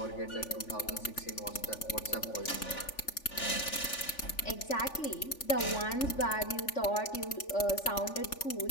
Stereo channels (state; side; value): late; right; 3.4 ms